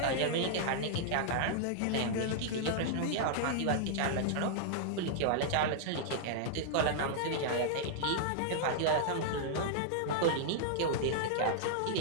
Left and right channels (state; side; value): different; both; correlation -0.01